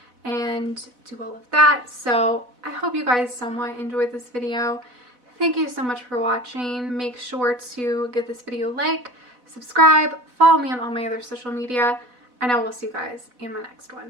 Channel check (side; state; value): left; late; 4.1 ms